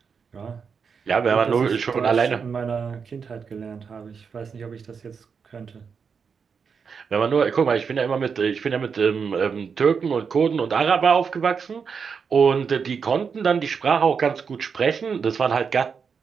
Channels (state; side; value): quieter; left; 6.0 dB